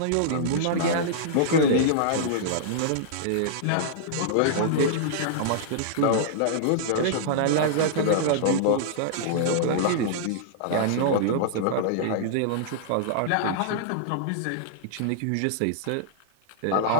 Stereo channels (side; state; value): both; different; correlation -0.02